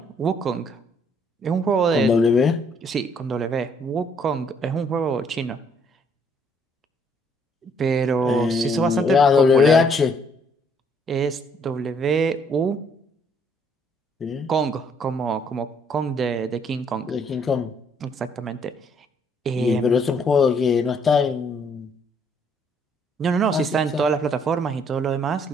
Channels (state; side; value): normal; both; correlation 0.66